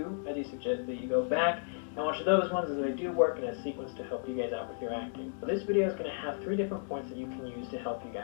I do suggest that you go back and watch those ones, as they do work in a sequence to help you guys out with your acting. So this video is going to have 3 different points that you can use to help you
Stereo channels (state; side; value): silent; right; digital silence